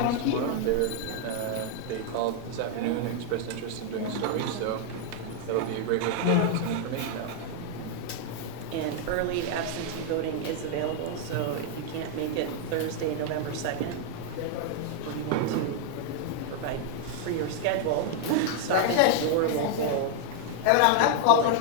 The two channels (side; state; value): both; different; correlation 0.00